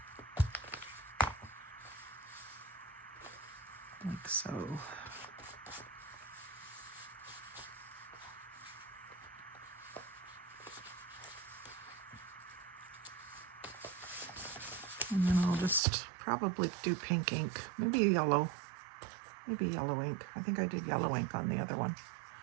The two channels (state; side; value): drops out; left; at 15.8 s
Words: Like so. And then I'll just probably do pink ink, maybe yellow ink. I think I did yellow ink on the other one.